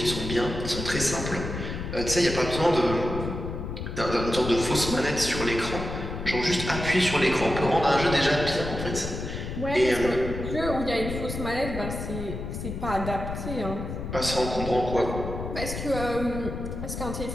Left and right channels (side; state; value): left; noise; rumble, 6 dB below the sound